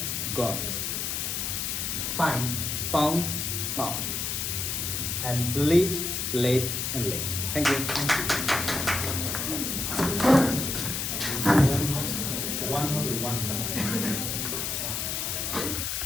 gone. Find, found, found. And lead, late, and late. Thank you. One.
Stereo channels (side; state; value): left; noise; hiss, 1 dB below the sound